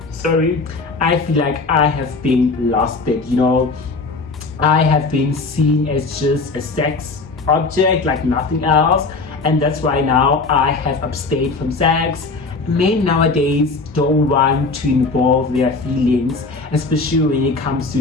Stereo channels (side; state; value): right; quieter; 3.9 dB